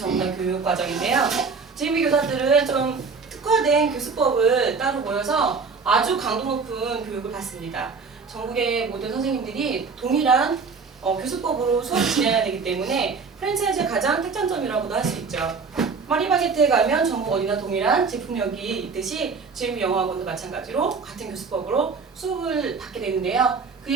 교육 과정인데요. GMB 교사들은 좀 특화된 교수법을 따로 모여서 아주 강도 높은 교육을 받습니다. 전국의 모든 선생님들이 동일한 교수법으로 수업을 진행해야 되기 때문에 프랜차이즈의 가장 특장점이라고도 할 수 있죠. 파리바게트에 가면 전국 어디나 동일한 제품력이 있듯이 GMB 영어학원도 마찬가지로 같은 교수법으로 수업을 받게 되는데요.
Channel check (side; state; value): left; quieter; 4.9 dB